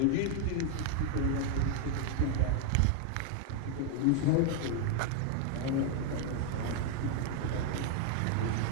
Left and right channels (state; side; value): different; both; correlation 0.01